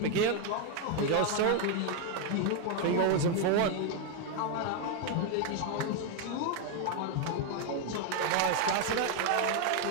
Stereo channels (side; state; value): both; different; correlation 0.00